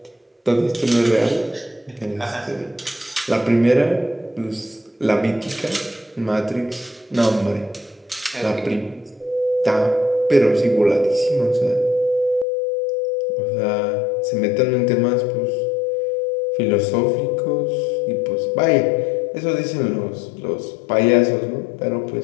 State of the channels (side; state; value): right; drops out; at 12.5 s